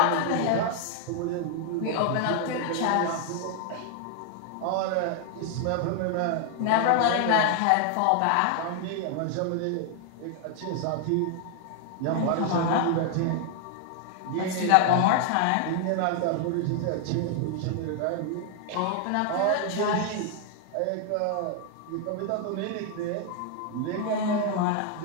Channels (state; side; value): different; both; correlation 0.00